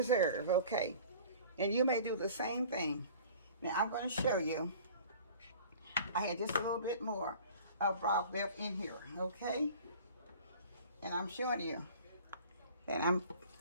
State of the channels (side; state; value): both; inverted; correlation -0.45